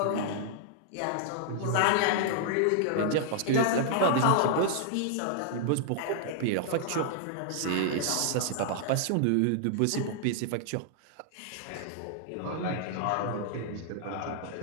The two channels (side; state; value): both; different; correlation -0.01